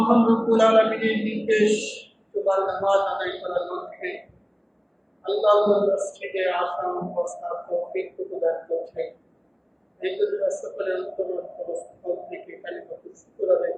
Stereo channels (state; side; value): identical; both; correlation 1.00